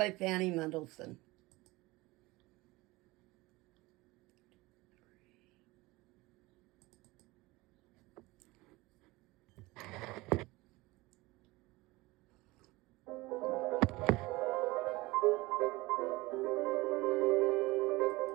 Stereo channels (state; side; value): quieter; left; 21.3 dB